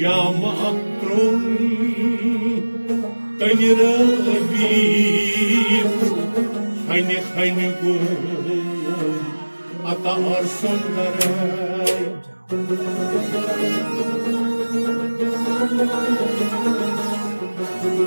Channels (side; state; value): both; inverted; correlation -1.00